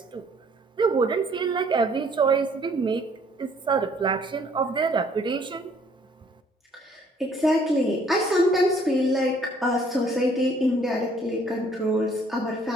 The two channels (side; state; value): both; normal; correlation 0.61